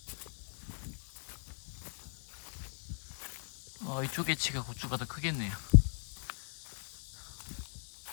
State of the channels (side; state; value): right; silent; digital silence